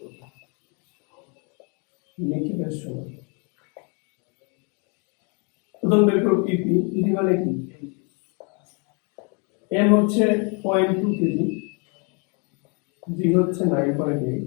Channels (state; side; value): quieter; right; 34.7 dB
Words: করব। নিক্ষেপের সময় প্রথম বের করব ইপি। ইপি মানে কি? এম হচ্ছে 0.2 কেজি, জি হচ্ছে